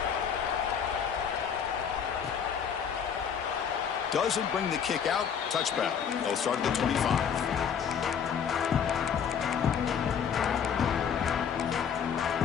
Doesn't bring the kick out. Touchback. They'll start at the 25.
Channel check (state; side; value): quieter; right; 7.5 dB